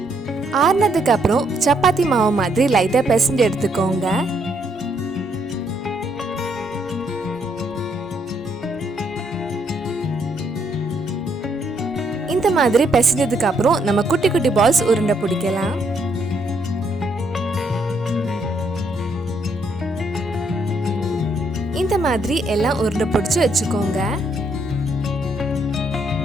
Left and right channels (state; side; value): normal; both; correlation 0.72